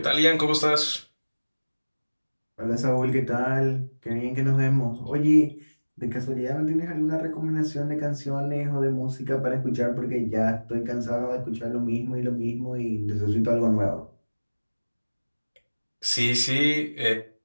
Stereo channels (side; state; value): both; inverted; correlation -1.00